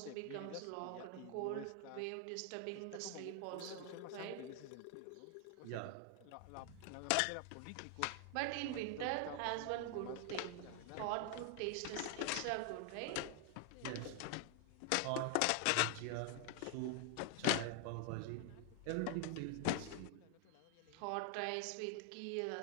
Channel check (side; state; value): both; different; correlation 0.00